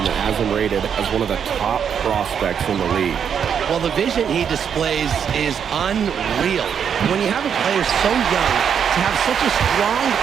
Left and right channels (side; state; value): left; quieter; 7.7 dB